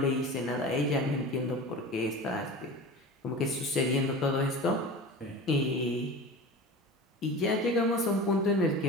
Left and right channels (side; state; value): both; normal; correlation 0.33